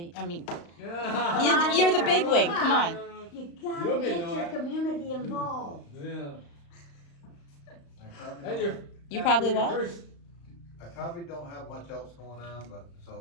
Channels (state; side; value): late; right; 35 ms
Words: Yeah. you're the big wig. Come on. You gotta You'll get know your it. community involved. Yeah. I probably Then don't- You probably your what? first- I probably don't have much else going on, but